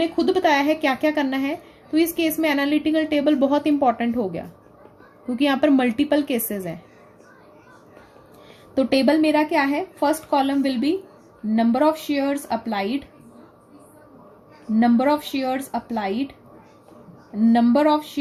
खुद बताया है क्या क्या करना है, तो इस केस में एनालिटिकल टेबल बहुत इंपॉर्टेंट हो गया क्योंकि यहाँ पर मल्टीपल केसेस हैं। तो टेबल मेरा क्या है? First column will be number of shares applied, number of shares applied, number of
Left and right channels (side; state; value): both; identical; correlation 1.00